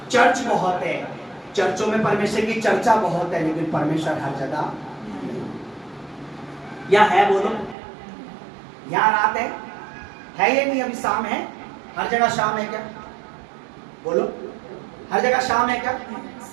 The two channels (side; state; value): left; drops out; at 7.8 s